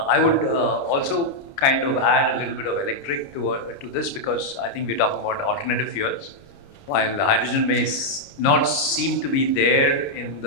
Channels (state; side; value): late; right; 29 ms